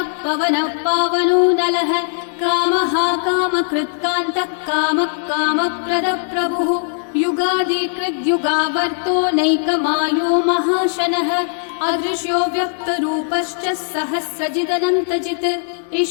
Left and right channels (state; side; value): silent; right; digital silence